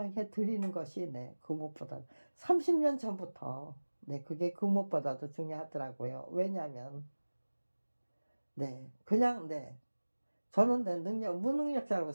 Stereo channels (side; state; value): both; inverted; correlation -1.00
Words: 드리는 것이 네, 그 무엇보다 30년 전부터 네, 그게 그 무엇보다도 중요하더라고요. 왜냐하면 네, 그냥 네, 저는 내 무능력자라고